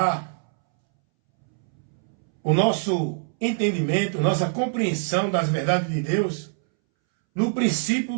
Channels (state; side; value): silent; left; 62 dB below the other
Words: o nosso entendimento, nossa compreensão das verdades de Deus no